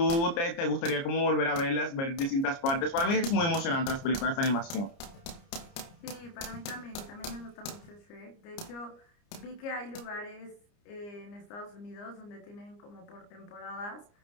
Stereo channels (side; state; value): right; late; 29 ms